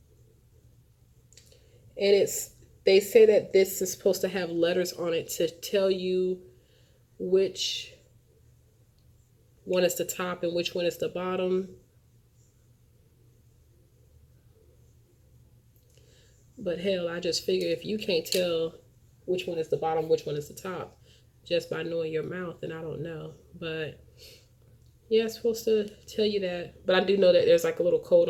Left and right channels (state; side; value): identical; both; correlation 1.00